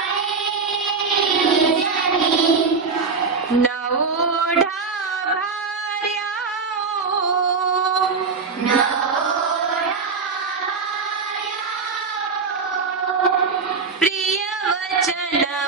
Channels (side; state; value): left; quieter; 4.9 dB